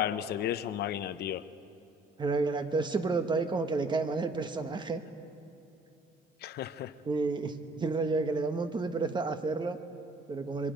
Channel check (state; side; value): normal; both; correlation 0.56